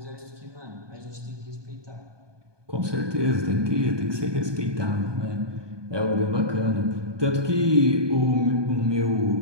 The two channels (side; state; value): left; late; 1.2 ms